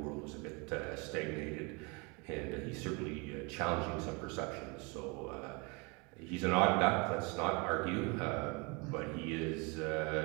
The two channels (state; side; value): quieter; left; 28.8 dB